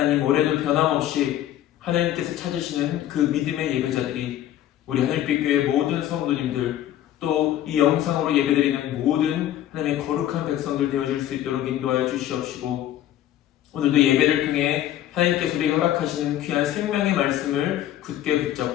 올해도 변함없이 하나님께서 찾으시는 그 믿음의 예배자들이 우리 하늘빛 교회 모든 성도님들, 또 이 영상으로 예배드리는 모든 하나님의 거룩한 백성들 되어줄 수 있도록 인도하여 주시옵시고, 오늘도 예배를 통해 하나님께서 우리에게 허락하시는 귀한 생명의 말씀을 굳게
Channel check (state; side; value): quieter; right; 12.4 dB